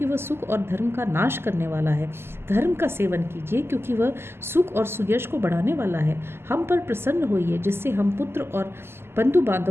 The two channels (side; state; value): left; late; 0.12 ms